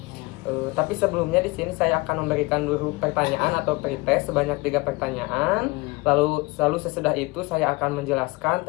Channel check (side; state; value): right; quieter; 24.0 dB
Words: Tapi sebelumnya di sini saya akan memberikan dulu pertanyaan atau pretest sebanyak 3 pertanyaan. Lalu sesudah itu saya akan menjelaskan